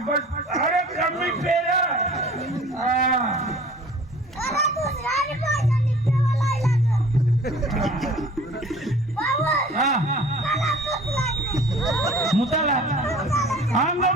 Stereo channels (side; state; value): both; normal; correlation 0.47